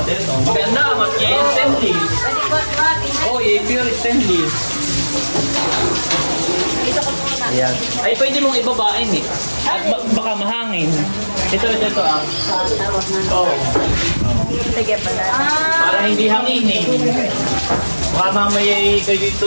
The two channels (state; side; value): inverted; both; correlation -1.00